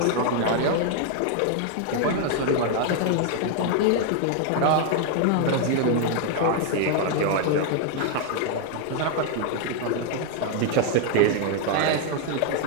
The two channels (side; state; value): both; different; correlation 0.00